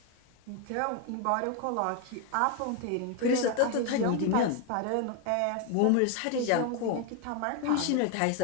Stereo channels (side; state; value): both; different; correlation 0.01